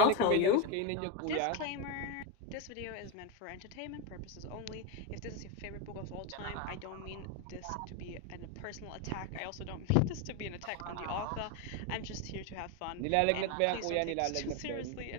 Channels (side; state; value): both; different; correlation 0.03